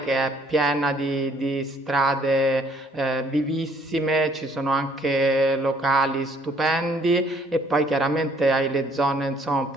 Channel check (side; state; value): both; normal; correlation 0.63